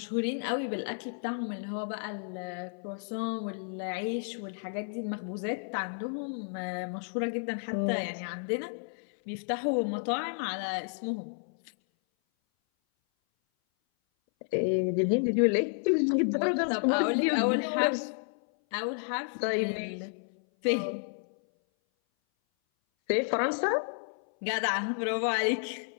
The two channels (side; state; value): right; silent; 57 dB below the other